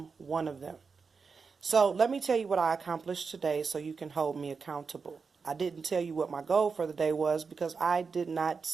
one of them. So let me tell you what I accomplished today so you can hold me accountable. I didn't tell you what my goal for the day was because I did not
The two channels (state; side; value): quieter; left; 5.1 dB